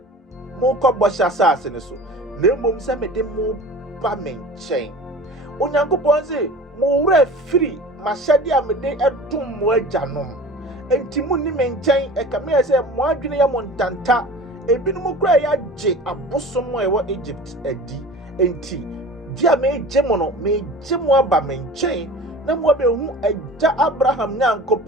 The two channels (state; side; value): normal; both; correlation 0.39